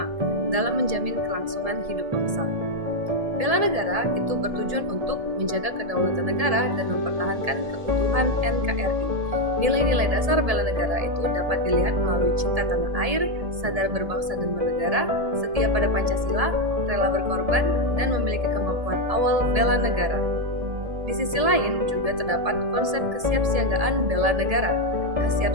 dalam menjamin kelangsungan hidup bangsa. Bela negara itu bertujuan untuk menjaga kedaulatan negara dan mempertahankan keutuhan NKRI. Nilai-nilai dasar bela negara itu dapat dilihat melalui cinta tanah air, sadar berbangsa dan bernegara, setia pada Pancasila, rela berkorban, dan memiliki kemampuan awal bela negara. Di sisi lain juga terdapat konsep kesiapsiagaan bela negara.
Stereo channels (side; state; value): left; late; 1.7 ms